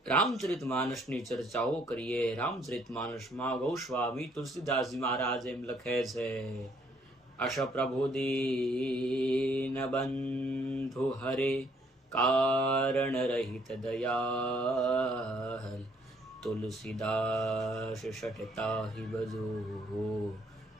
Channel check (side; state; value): both; normal; correlation 0.66